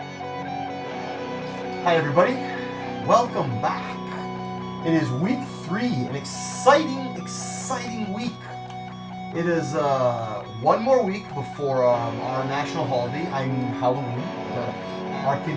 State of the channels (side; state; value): both; identical; correlation 1.00